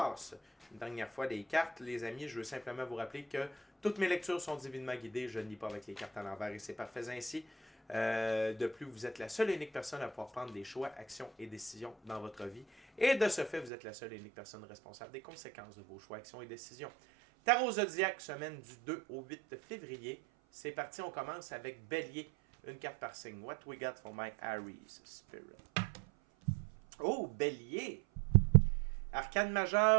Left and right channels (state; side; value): drops out; left; at 13.7 s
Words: une dernière fois des cartes, les amis, je veux simplement vous rappeler que toutes mes lectures sont divinement guidées. Je ne lis pas avec les cartes à l'envers et c'est parfait ainsi. De plus, vous êtes la seule et unique personne à pouvoir prendre des choix, actions et décisions dans votre vie. Et de ce fait, vous êtes la seule et unique personne responsable des conséquences de vos choix, actions et décisions. Tarot Zodiac, semaine du 2 au 8 février. C'est parti, on commence avec Bélier. Une carte par signe. What we got for my Aries Spirit? Oh, Bélier! Arcane